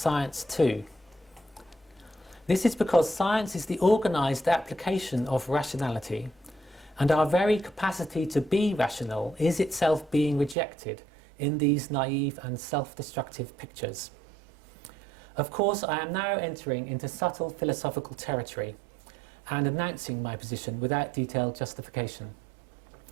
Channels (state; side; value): drops out; left; at 10.6 s